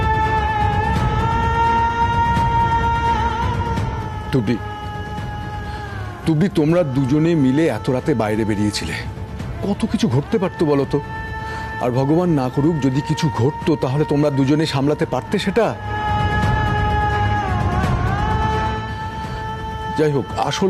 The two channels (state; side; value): identical; both; correlation 1.00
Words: তুবড়ি, তোমরা দুজনে মিলে এত রাতে বাইরে বেরিয়েছিলে, কত কিছু ঘটতে পারতো বলো তো। আর ভগবান না করুক যদি কিছু ঘটতো, তাহলে তোমরা দুজনে সামলাতে পারতে সেটা? যাই হোক,